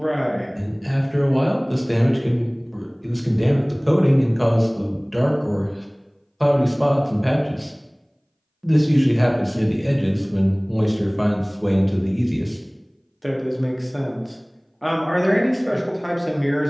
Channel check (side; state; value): both; identical; correlation 1.00